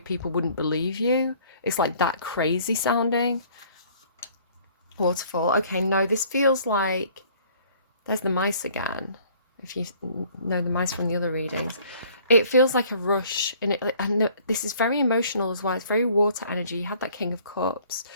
wouldn't believe you. It's like that crazy sounding. Waterfall. Okay, no, this feels like there's the mice again. If you know the mice from the other readings, it feels like a rush, and this is very emotional as well. It's very water energy. You had that King of Cups.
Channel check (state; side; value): inverted; both; correlation -0.56